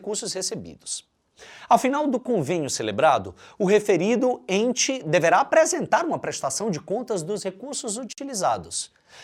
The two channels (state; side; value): identical; both; correlation 1.00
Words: recebidos. Ao final do convênio celebrado, o referido ente deverá apresentar uma prestação de contas dos recursos utilizados,